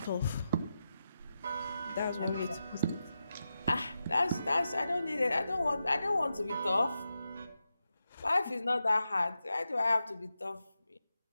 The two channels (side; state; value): both; inverted; correlation -0.89